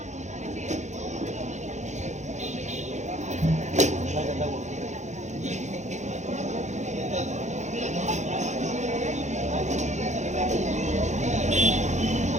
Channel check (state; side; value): late; left; 0.34 ms